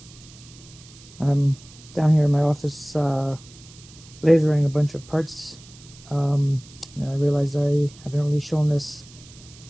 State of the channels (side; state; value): right; noise; hiss, 22 dB below the sound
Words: I'm down here in my office lasering a bunch of parts, and I realized I haven't really shown this